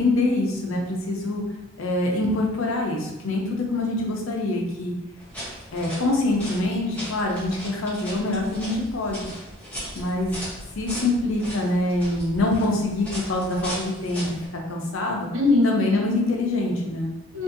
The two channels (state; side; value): normal; both; correlation 0.53